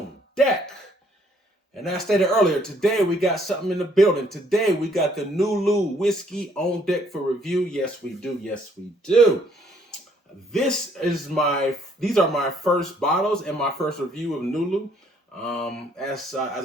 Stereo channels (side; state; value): both; normal; correlation 0.65